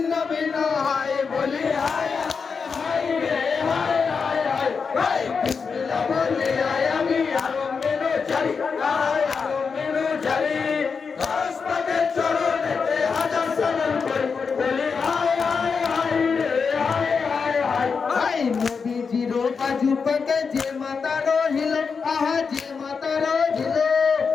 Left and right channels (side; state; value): right; quieter; 5.4 dB